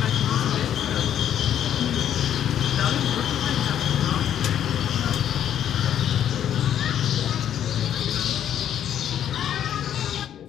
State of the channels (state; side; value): quieter; right; 10.1 dB